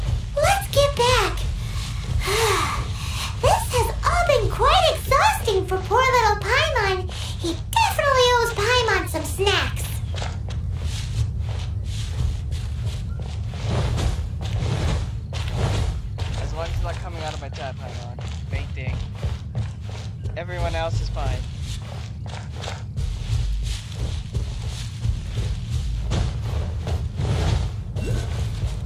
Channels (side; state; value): both; identical; correlation 1.00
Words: Let's get back. This has all been quite exhausting for poor little Paimon. He definitely owes Paimon some snacks. As long as it's not coming out of my tap, hang on. Fainting. Everyone else is fine.